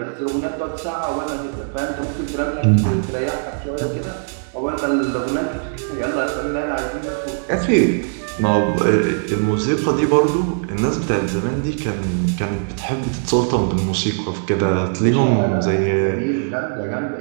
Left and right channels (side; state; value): left; silent; 66 dB below the other